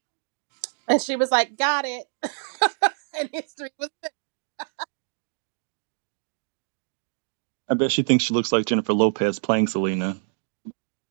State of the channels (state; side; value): silent; left; digital silence